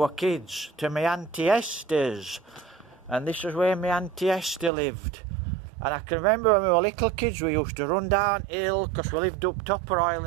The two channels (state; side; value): drops out; left; at 4.7 s